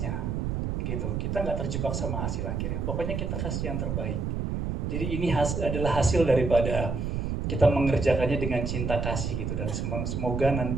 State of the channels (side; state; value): right; noise; rumble, 2 dB below the sound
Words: gitu. Kita nggak terjebak sama hasil akhirnya. Pokoknya kita kasih yang terbaik. Jadi ini adalah hasil daripada kita mengerjakannya dengan cinta kasih gitu. Dan semoga